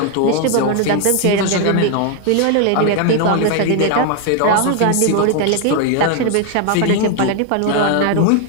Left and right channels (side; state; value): both; different; correlation 0.01